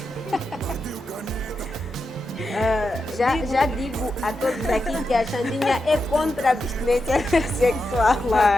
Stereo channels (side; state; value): both; normal; correlation 0.88